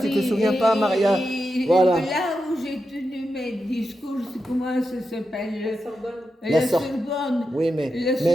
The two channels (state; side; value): normal; both; correlation 0.88